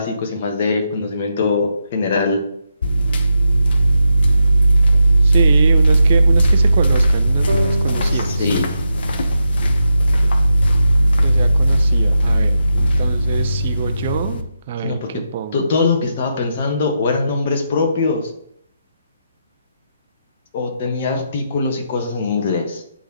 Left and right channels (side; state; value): both; inverted; correlation -0.84